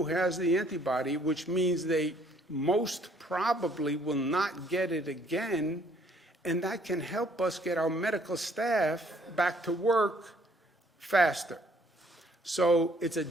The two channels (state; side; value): normal; both; correlation 0.63